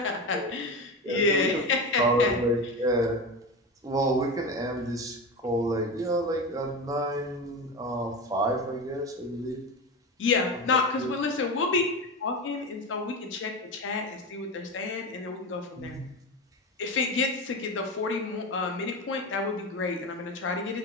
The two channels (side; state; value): both; normal; correlation 0.22